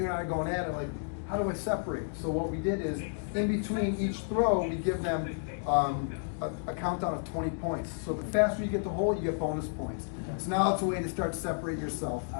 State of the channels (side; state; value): right; silent; digital silence